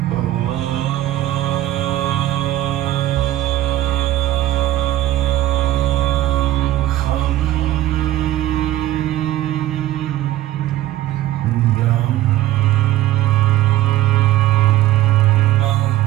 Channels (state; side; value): quieter; left; 14.7 dB